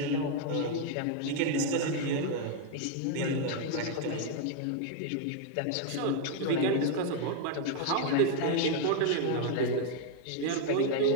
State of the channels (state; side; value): different; both; correlation 0.00